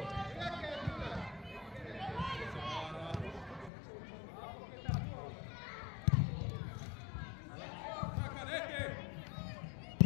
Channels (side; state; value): right; drops out; at 3.7 s